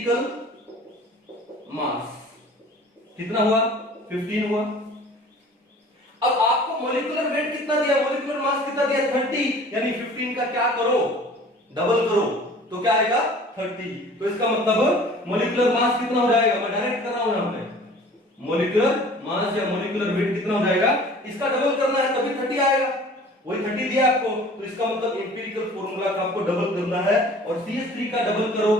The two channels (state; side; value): normal; both; correlation 0.47